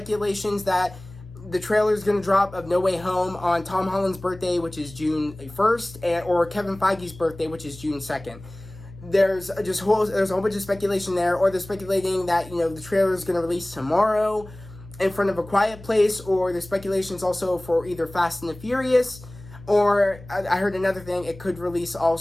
that the trailer is going to drop of No Way Home on Tom Holland's birthday, which is June 1st, or Kevin Feige's birthday, which is June 2nd. There's a whole bunch of speculation there, or they're speculating that the trailer is going to release tomorrow in front of A Quiet Place, or there's speculations also for either Fast and the Furious, or I heard another thing, it could release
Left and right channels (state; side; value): noise; left; hum, 18 dB below the sound